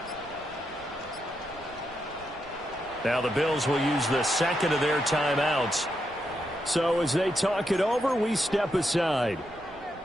Now the Bills will use the 2nd of their timeouts. So as they talk it over, we step aside.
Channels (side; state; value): right; noise; rumble, 22 dB below the sound